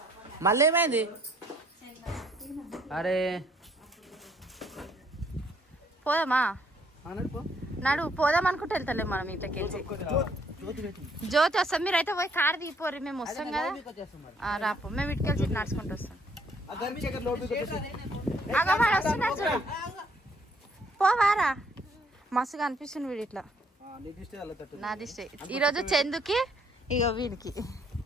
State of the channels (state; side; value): normal; both; correlation 0.66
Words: మళ్ళీ ఏమైంది? అరే పోదామా? నడు పోదాం అనుకుంటే వెళ్తలే మనం ఇంట్లోకి. జ్యోతి వస్తాం, మీరైతే పోయి కారు దిగిపోరు, మేము వస్తాం కదా. రాపో, మేము ఇటుకెళ్ళి నడుచుకుంటూ వస్తాం. పోవారా? మస్తుగా అనిపిస్తుంది వీడు ఇట్లా. నా దిష్టి ఈరోజు చందుకి, ఇక వీడికి